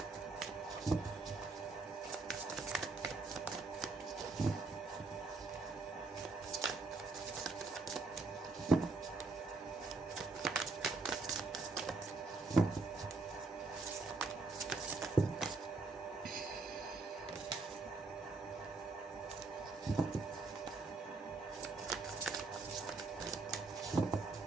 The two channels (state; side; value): quieter; left; 3.6 dB